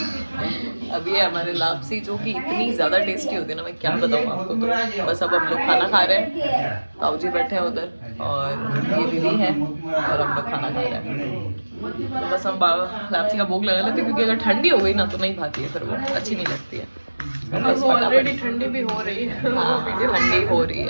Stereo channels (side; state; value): both; inverted; correlation -1.00